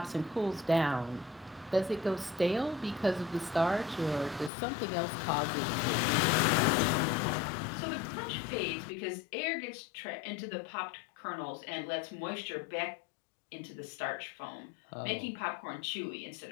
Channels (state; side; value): drops out; right; at 4.5 s